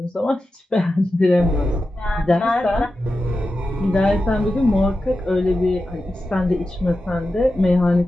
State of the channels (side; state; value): both; normal; correlation 0.92